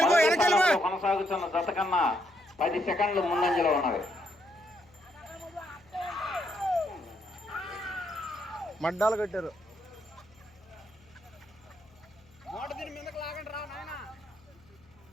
కొనసాగుతున్న జత కన్నా 10 సెకండ్లు ముందంజలో ఉన్నవి. మడ్డాలు కట్టారు.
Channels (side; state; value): left; noise; hum, 28 dB below the sound